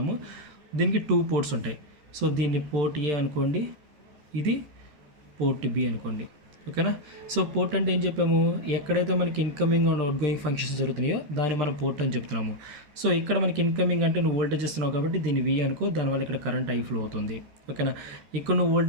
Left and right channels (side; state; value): left; late; 13 ms